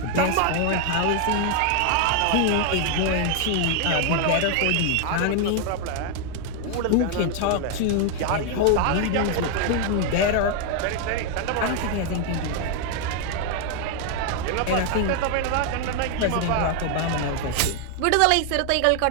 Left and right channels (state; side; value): different; both; correlation 0.00